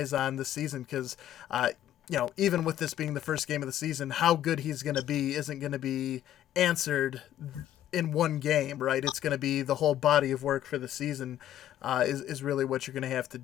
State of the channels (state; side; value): quieter; right; 12.0 dB